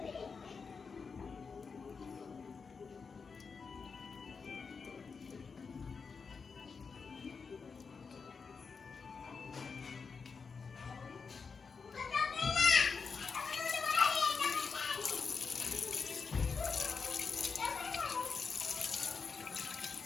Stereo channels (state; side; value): quieter; right; 5.3 dB